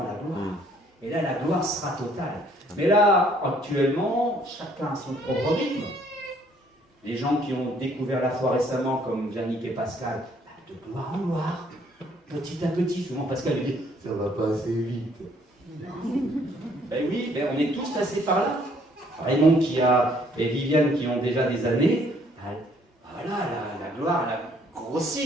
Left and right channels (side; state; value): both; normal; correlation 0.63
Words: la gloire. Et là, la gloire sera totale. Mais là, actuellement, chacun a son propre rythme. Les gens qui ont découvert la foi récemment, comme Yannick et Pascal, de gloire en gloire, petit à petit. Souvent, Pascal dit, ça va pas assez vite. Ben oui, on est tous passés par là. Raymond et Viviane qui ont déjà des années, voilà, la gloire, elle a